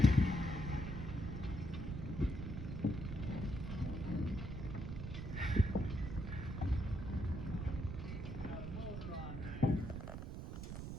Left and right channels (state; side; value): noise; right; rumble, 6 dB below the sound